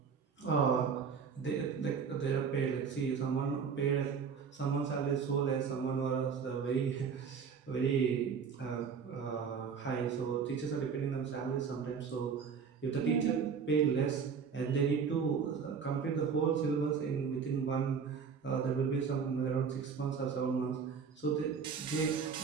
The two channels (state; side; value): quieter; left; 6.2 dB